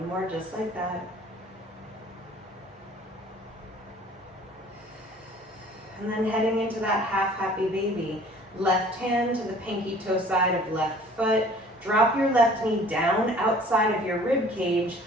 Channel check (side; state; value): both; normal; correlation 0.51